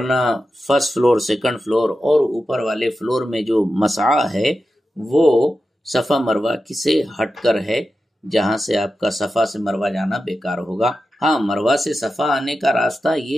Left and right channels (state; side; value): normal; both; correlation 0.91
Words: فرسٹ فلور سیکنڈ فلور اور اوپر والے فلور میں جو مسعی ہے وہ صفا مروہ سے ہٹ کر ہے، جہاں سے آپ کا صفا سے مروہ جانا بیکار ہوگا۔ ہاں، مروہ سے صفا آنے کا راستہ